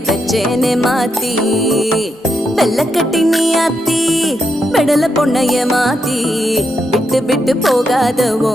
பெச்சேனே மாத்தி வெள்ளக்கட்டி நீ ஆத்தி பெடல பொண்ணைய மாத்தி விட்டு விட்டு போகாத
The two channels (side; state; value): both; normal; correlation 0.82